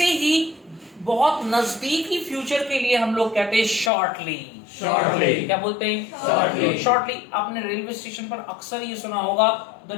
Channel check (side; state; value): right; drops out; at 3.9 s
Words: ही बहुत नजदीकी फ्यूचर के लिए हम लोग कहते हैं शॉर्टली। क्या बोलते हैं? शॉर्टली। आपने रेलवे स्टेशन पर अक्सर ये सुना होगा, the